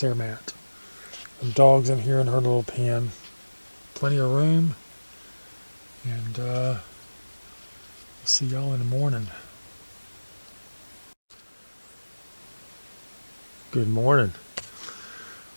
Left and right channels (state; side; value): inverted; both; correlation -1.00